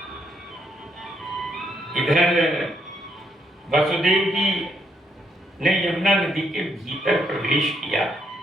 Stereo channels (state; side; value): normal; both; correlation 0.74